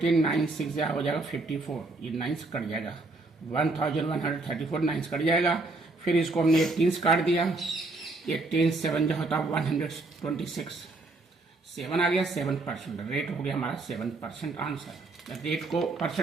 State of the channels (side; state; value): left; quieter; 3.2 dB